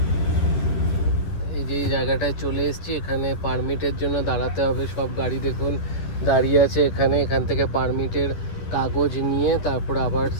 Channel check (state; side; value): late; right; 10 ms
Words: এই জায়গাটায় চলে এসেছি। এখানে পারমিটের জন্য দাঁড়াতে হবে। সব গাড়ি দেখুন দাঁড়িয়ে আছে এখানে। এখান থেকে পারমিটের কাগজ নিয়ে তারপর আবার